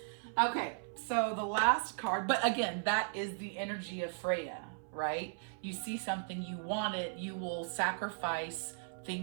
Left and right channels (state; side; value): silent; left; 53 dB below the other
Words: Okay, so the last card, but again, that is the energy of Freya, right? You see something, you want it, you will sacrifice